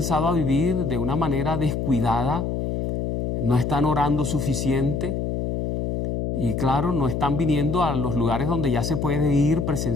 a vivir de una manera descuidada, no están orando suficiente. Y claro, no están viniendo a los lugares donde ya se puede ir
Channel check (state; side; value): noise; left; hum, 1 dB below the sound